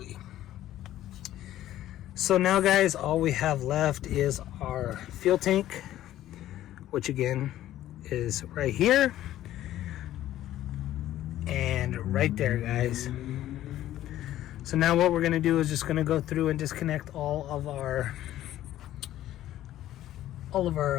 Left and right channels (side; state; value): right; quieter; 13.4 dB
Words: So now, guys, all we have left is our fuel tank, which again is right here and right there, guys. So now what we're going to do is just going to go through and disconnect all of our